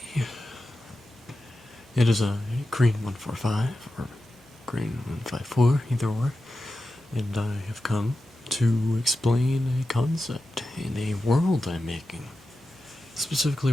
It is a green 145 or green 154, either or, and I have come to explain a concept in a world I'm making, specifically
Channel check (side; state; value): right; noise; hum, 29 dB below the sound